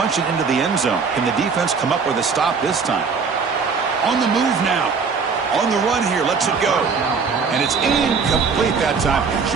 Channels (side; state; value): left; quieter; 5.4 dB